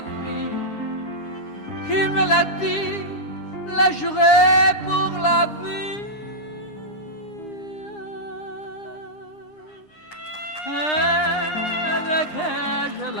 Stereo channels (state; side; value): late; right; 9.8 ms